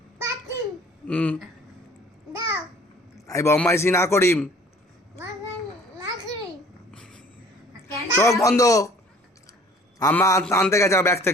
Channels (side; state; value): both; normal; correlation 0.51